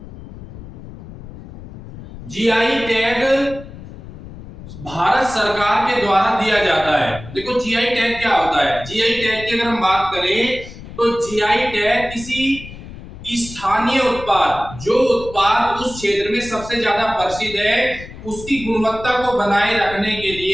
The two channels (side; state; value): left; noise; rumble, 14 dB below the sound